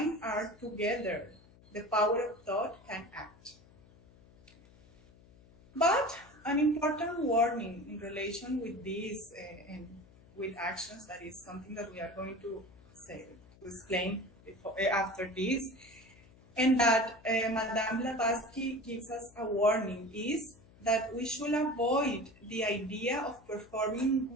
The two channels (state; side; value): noise; left; hum, 25 dB below the sound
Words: are together, the power of thought can act. But an important warning in relation with this and with actions, that is something that we are going to explain after this, and that Madame Blavatsky gives us a warning, is that we should avoid the idea of performing